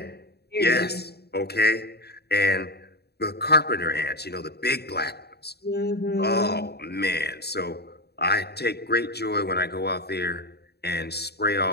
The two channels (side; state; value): right; late; 0.47 ms